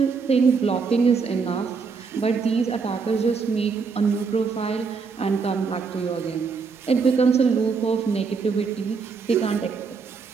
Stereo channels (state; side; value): quieter; left; 5.1 dB